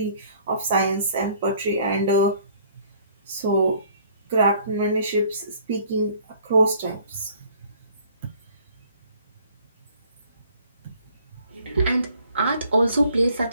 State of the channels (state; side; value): inverted; both; correlation -0.58